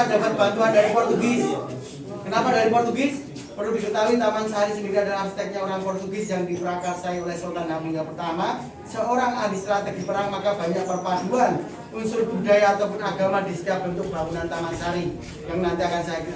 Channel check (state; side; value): identical; both; correlation 1.00